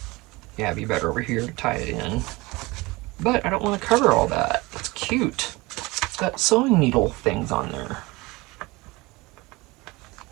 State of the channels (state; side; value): quieter; left; 22.9 dB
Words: Yeah, it'd be better over here to tie it in. But I don't want to cover all that. That's cute. It's got sewing needle things on there.